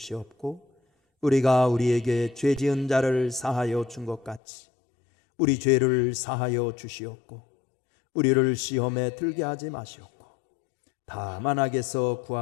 우리가 우리에게 죄 지은 자를 사하여 준 것 같이 우리 죄를 사하여 주시옵고 우리를 시험에 들게 하지 마시옵고 다만 악에서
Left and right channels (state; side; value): drops out; right; at 4.4 s